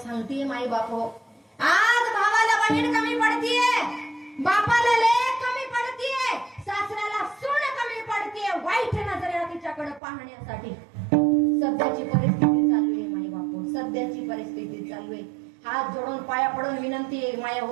माय बाप हो. आज भावाला बहीण कमी पडतीये, बापाला लेक कमी पडतीये, सासऱ्याला सून कमी पडतीये वाईट नजरेला तिच्याकडे पाहण्यासाठी. सध्याची परिस्थिती चालू आहे माय बाप, सध्याची परिस्थिती चालू आहे. हात जोडून पाया पडून विनंती आहे माया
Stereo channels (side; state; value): left; drops out; at 10.0 s